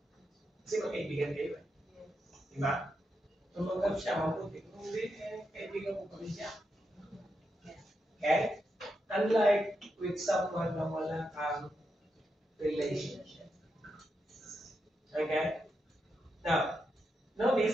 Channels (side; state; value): both; normal; correlation 0.85